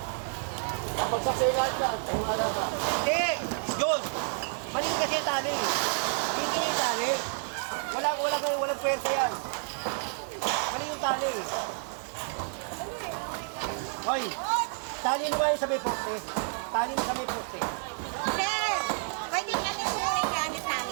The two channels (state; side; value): silent; left; 58 dB below the other